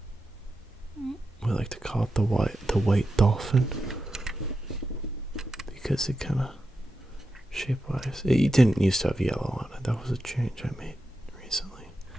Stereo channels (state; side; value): normal; both; correlation 0.89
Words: We like to call it the white Dolphin, because it kind of shape-wise, it didn't used to have yellow on it. That was a change I made recently.